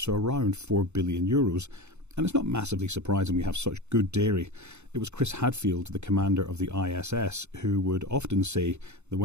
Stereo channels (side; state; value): left; late; 0.82 ms